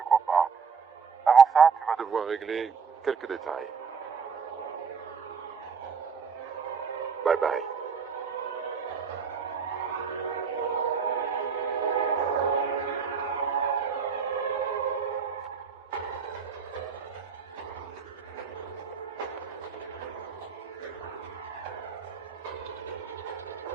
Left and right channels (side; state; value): left; quieter; 5.9 dB